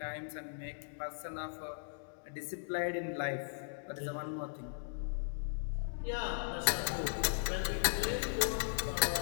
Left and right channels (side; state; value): right; silent; digital silence